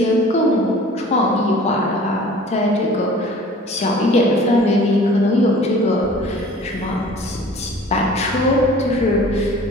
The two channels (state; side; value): normal; both; correlation 0.47